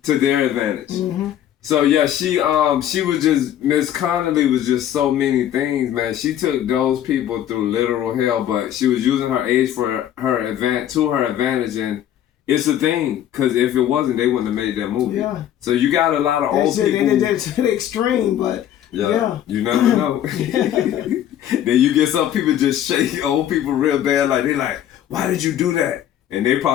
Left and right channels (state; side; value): quieter; right; 11.1 dB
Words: to their advantage. Mm-hmm. So yeah, she was just, Miss Connolly was just so many things, man. She took those people through literal hell, but she was using her age for her advantage, and it's a thing, because if it wasn't, they wouldn't have made that movie. Yeah. So you got a lot of old people. They did that to the extreme, but yeah. You never know. Then you get some people just shake old people real bad, like they like, why did you do that? And they